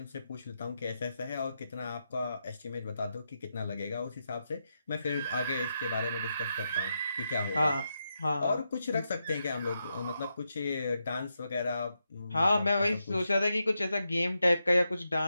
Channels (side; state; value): both; inverted; correlation -0.85